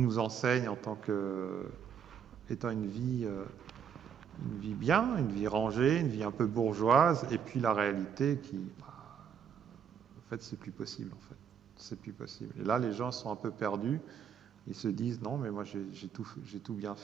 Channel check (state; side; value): quieter; left; 7.8 dB